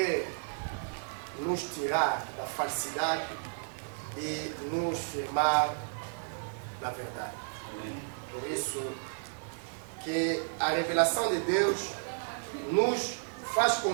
nos tirar da falsidade e nos firmar na verdade. Amém. Por isso que a revelação de Deus nos faz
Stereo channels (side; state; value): left; silent; 56 dB below the other